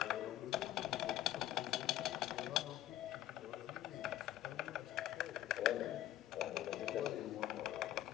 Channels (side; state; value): right; quieter; 13.2 dB